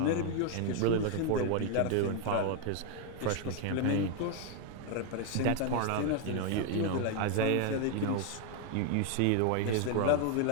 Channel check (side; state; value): both; different; correlation 0.01